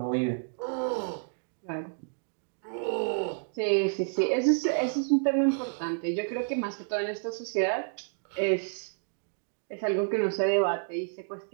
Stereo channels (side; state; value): left; silent; digital silence